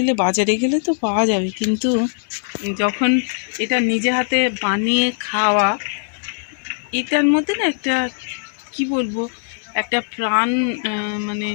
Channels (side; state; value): right; silent; digital silence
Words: বাজারে গেলে তো পাওয়া যাবে, কিন্তু যখন এটা নিজে হাতে বানিয়ে খাওয়া, এটার মধ্যে না একটা কি বলবো, একটা প্রাণ, মানে